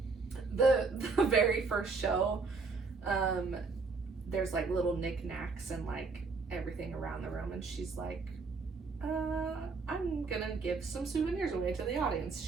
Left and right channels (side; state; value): left; quieter; 4.3 dB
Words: The very first show, there's like little knickknacks and like everything around the room, and she's like, I'm gonna give some souvenirs away to the audience.